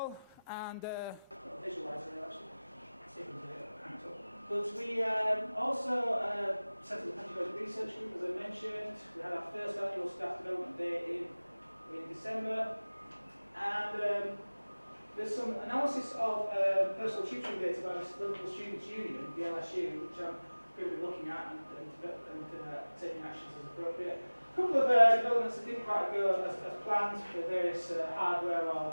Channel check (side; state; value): both; inverted; correlation -0.99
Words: and visualizer actually. See if we can do it. But we also set up the pedagogic research group, as I mentioned. We had our first annual staff development day in December, and there's some analysis of personal tutoring data by the Local Students' Union, the LSU, which I'm going to be looking at and taking actions as appropriate. A couple of developments that didn't quite go as planned for various hardware